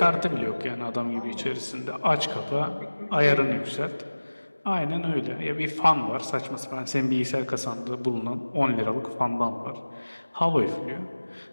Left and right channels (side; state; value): both; inverted; correlation -1.00